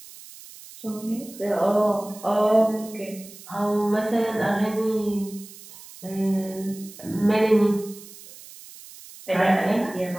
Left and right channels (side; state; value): right; noise; hiss, 18 dB below the sound